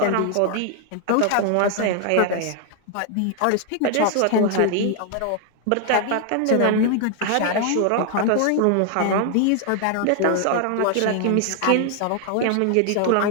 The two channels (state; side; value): different; both; correlation 0.00